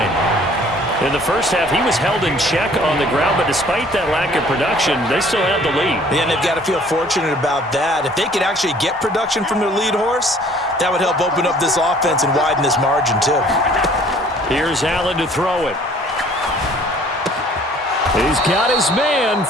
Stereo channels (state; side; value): normal; both; correlation 0.55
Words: In the first half, he was held in check on the ground, but despite that lack of production, they still have the lead. Yeah, and they've got to feel fortunate about that. If they could actually get production from their lead horse, that would help open up this offense and widen this margin, too. Here's Allen to throw it. He's got his man,